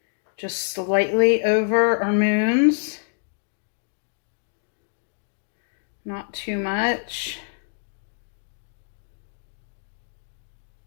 just slightly over our moons. Not too much.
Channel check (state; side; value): silent; right; digital silence